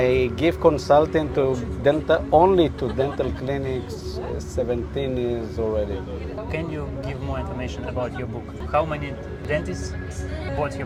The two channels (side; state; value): both; identical; correlation 1.00